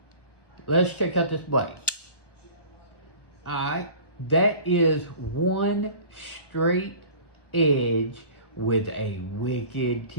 let's check out this blade. Alright, that is one straight edge with a wicked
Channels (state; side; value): late; right; 1.0 ms